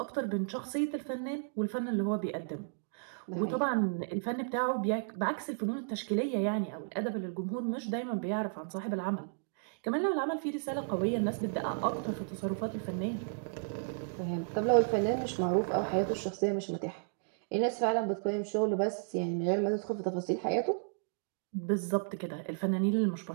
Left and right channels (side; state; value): left; silent; digital silence